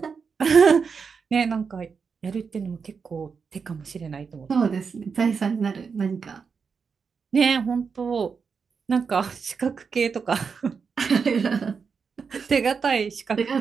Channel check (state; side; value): quieter; left; 5.7 dB